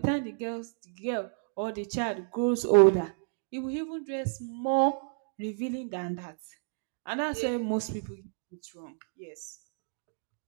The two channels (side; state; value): left; silent; digital silence